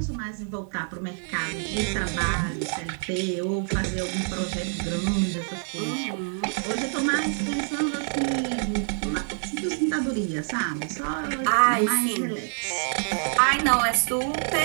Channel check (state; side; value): silent; left; 56 dB below the other